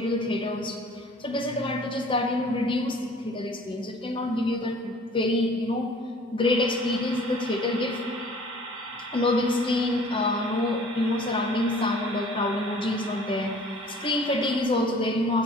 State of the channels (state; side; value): normal; both; correlation 0.50